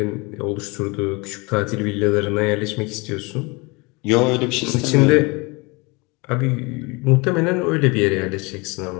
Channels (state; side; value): quieter; right; 27.1 dB